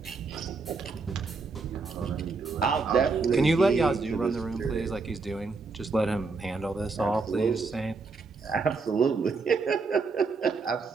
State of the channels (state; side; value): quieter; left; 4.2 dB